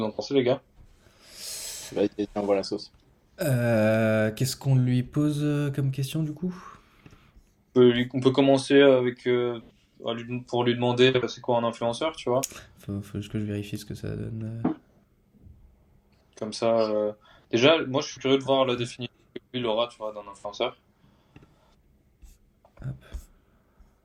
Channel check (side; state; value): both; identical; correlation 1.00